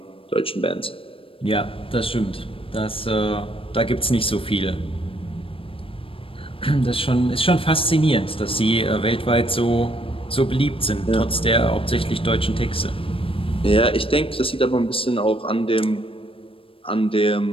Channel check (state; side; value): late; right; 0.26 ms